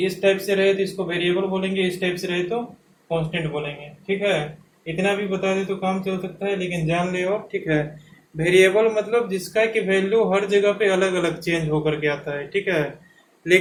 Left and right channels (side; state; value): both; identical; correlation 1.00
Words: इस टाइप से रहे तो इसको वेरिएबल बोलेंगे, इस टाइप से रहे तो कांस्टेंट बोलेंगे। ठीक है, इतना भी बता दे तो काम चल सकता है, लेकिन जान ले। और ठीक है, वेरिएबल मतलब जिसका कि वैल्यू हर जगह पे अलग अलग चेंज होकर के आता है। ठीक है,